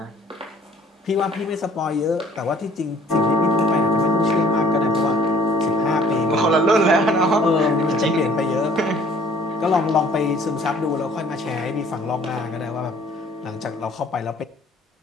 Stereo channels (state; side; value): normal; both; correlation 0.56